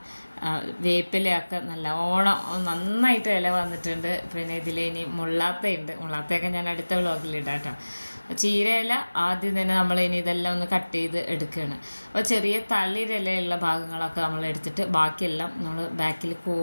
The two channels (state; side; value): inverted; both; correlation -1.00